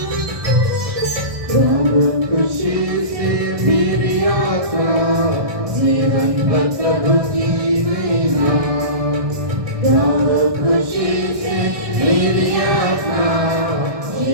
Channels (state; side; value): late; left; 1.2 ms